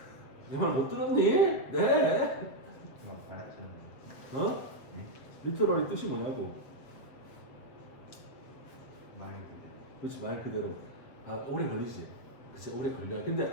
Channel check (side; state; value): right; late; 7.9 ms